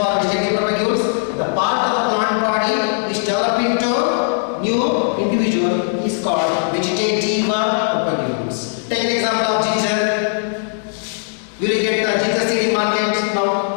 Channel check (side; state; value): right; silent; digital silence